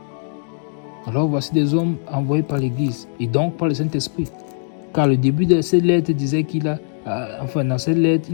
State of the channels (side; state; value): right; silent; digital silence